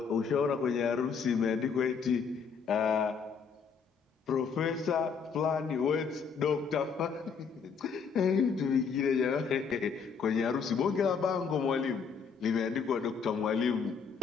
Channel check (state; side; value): quieter; right; 6.0 dB